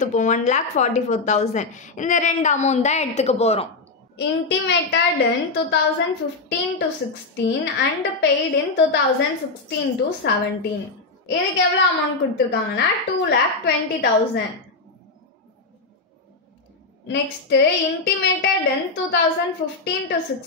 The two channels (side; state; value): right; quieter; 3.7 dB